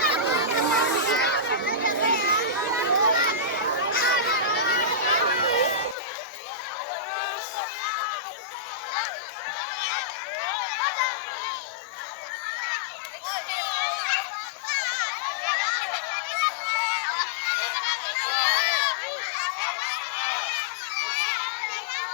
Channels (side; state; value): right; drops out; at 6.0 s